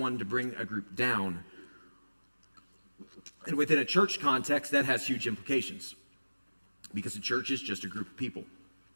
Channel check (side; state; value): both; inverted; correlation -1.00